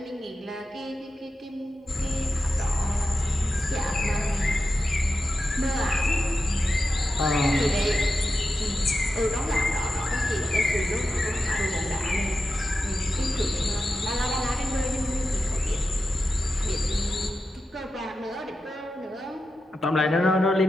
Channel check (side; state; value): both; normal; correlation 0.90